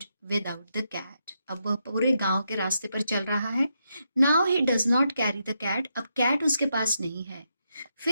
without the cat. अब वह पूरे गांव के रास्ते पर चल रहा है. Now he does not carry the cat. अब कैट उसके पास नहीं है.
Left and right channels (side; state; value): both; inverted; correlation -0.82